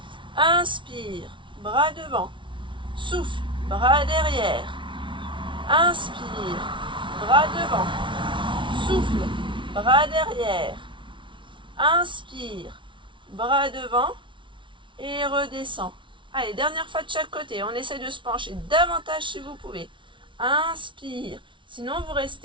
Inspire, bras devant. Souffle, bras derrière. Inspire, bras devant. Souffle, bras derrière. Inspire, bras devant et redescend. Allez, dernière fois de chaque côté. On essaie de se pencher davantage si vous pouvez. Inspire. Sinon, vous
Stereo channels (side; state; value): left; late; 0.24 ms